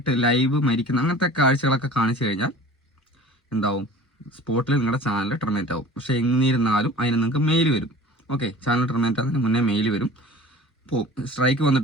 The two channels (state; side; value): normal; both; correlation 0.42